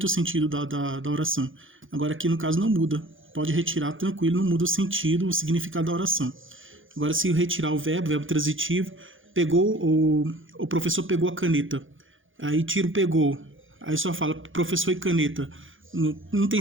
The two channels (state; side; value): late; left; 0.58 ms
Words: o sentido da oração. Agora, aqui no caso, não muda. Pode retirar tranquilo, não muda o sentido, o significado da oração. Agora, se retirar o verbo transitivo, o professor pegou a caneta. Aí tira o pegou. Aí só fala professor e caneta. Não tem